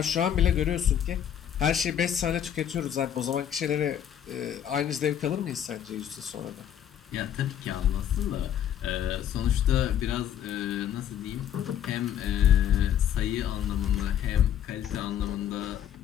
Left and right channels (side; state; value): right; quieter; 9.9 dB